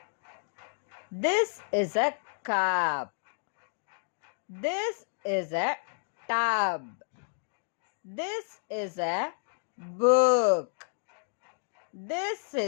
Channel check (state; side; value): silent; right; digital silence